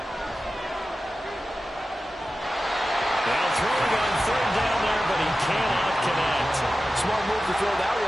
Smart move to throw that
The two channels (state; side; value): normal; both; correlation 0.94